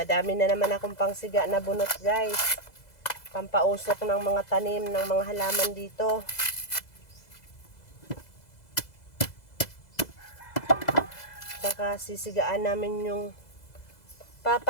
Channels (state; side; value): late; right; 2.0 ms